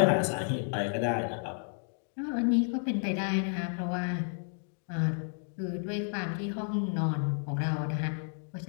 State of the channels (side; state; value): right; silent; 57 dB below the other